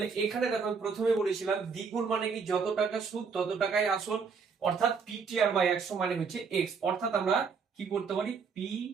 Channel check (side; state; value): left; quieter; 5.5 dB